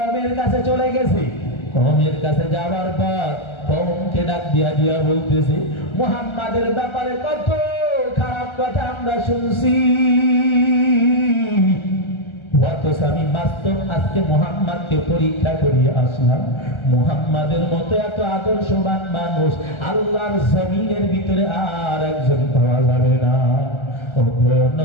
কাছে চলে গেছে। কওমের কাছে যাওয়ার পর কওমকে ডাক দিয়া দিয়া বলতেছে, মুহাম্মাদের ব্যাপারে কত খারাপ কথা আমরা শুনছি, অথচ আমি বাস্তব আজকে মুহাম্মাদকে পরীক্ষা করিয়ে আসলাম। মুহাম্মাদের মতো এত আদর্শবান মানুষ আল্লাহর জমিনের ভিতরে আর একজন পাওয়া যাবে না। ও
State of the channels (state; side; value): late; right; 1.3 ms